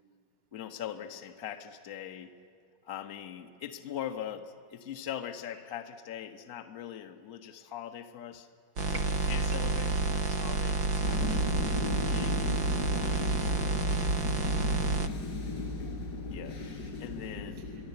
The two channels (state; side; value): late; left; 5.9 ms